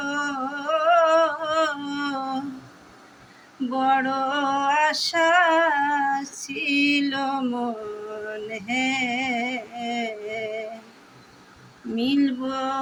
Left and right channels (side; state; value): both; identical; correlation 1.00